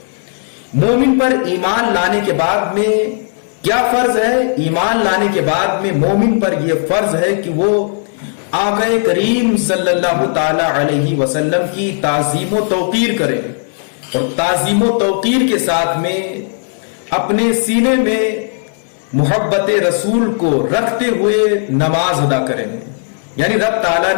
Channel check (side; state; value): right; silent; digital silence